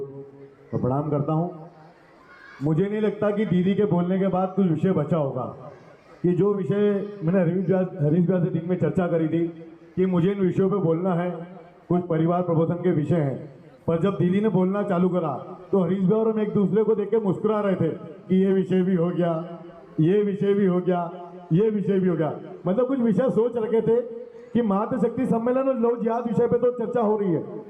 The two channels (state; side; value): identical; both; correlation 1.00